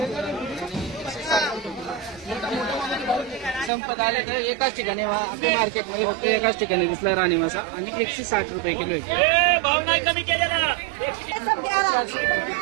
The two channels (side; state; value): left; drops out; at 3.7 s